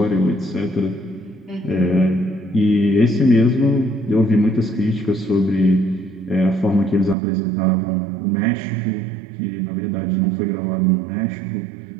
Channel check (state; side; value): drops out; left; at 7.2 s